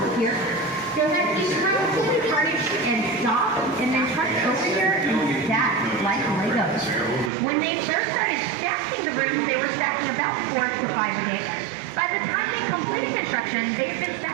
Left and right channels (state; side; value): drops out; left; at 7.3 s